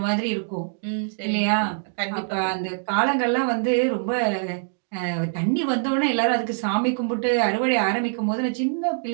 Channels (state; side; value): silent; left; digital silence